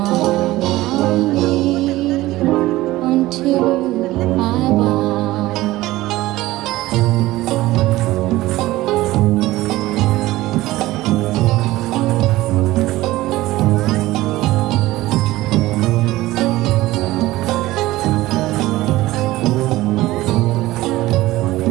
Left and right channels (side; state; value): left; quieter; 17.5 dB